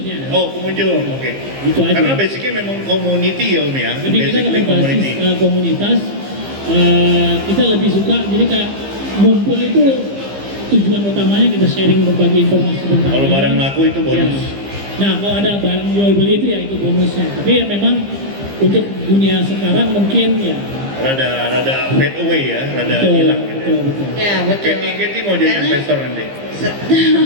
Oh, pengunjung, oke. Gitu aja. Karena basicnya memang community ya Om ya? Lebih kita Basically kalau basis komunitas, kita lebih suka jadi kayak ngumpul itu tujuan utamanya kita sharing berbagi informasi tentang Kalau mainan. barang laku itu bonus. Ya. Nah kalau ada barang jual beli itu ya itu bonusnya. Tapi ya memang untuk dunia sekarang mungkin ya Rada fade away ya, rada betul, hilang gitu ya. betul. Ya betul. Katie mau jadi Karena- investor nanti?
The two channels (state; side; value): late; left; 15 ms